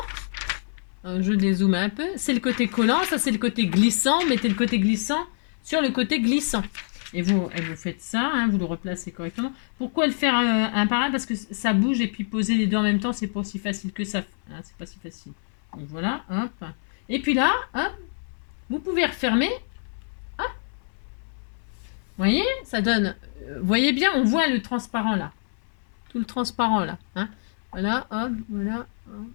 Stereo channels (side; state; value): right; silent; 60 dB below the other